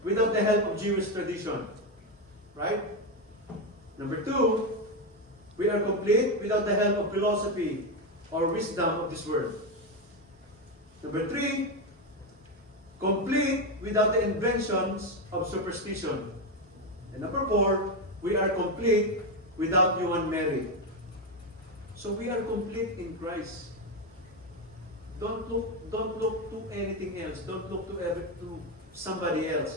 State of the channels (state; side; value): normal; both; correlation 0.09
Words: without the help of Jewish tradition. Right? Number two, we are complete without the help of philosophy or wisdom of this world. Number three, complete without the inventions of superstition. And number four, we are complete without human merit. So we are complete in Christ. Don't look to anything else. Don't look to somebody